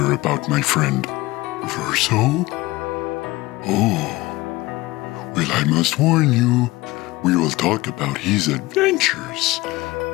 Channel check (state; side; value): quieter; right; 20.0 dB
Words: about my friend Verso? Oh, well, I must warn you, we will talk about his adventures